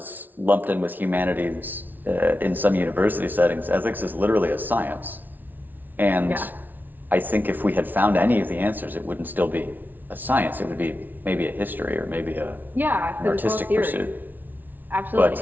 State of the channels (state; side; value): late; left; 0.085 ms